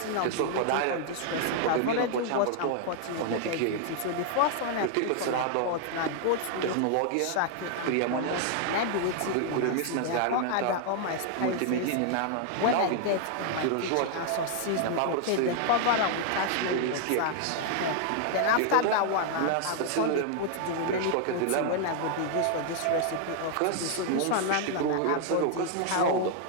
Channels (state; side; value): different; both; correlation 0.00